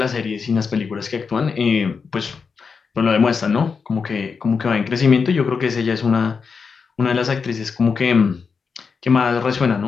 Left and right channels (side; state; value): right; quieter; 5.4 dB